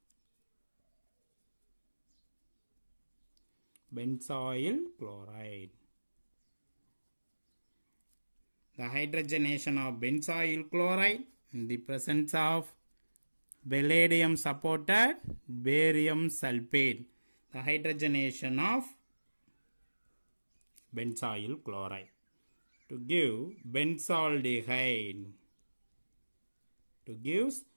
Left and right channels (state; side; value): inverted; both; correlation -1.00